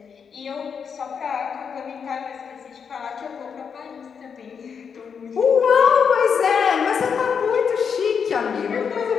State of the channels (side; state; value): right; quieter; 6.6 dB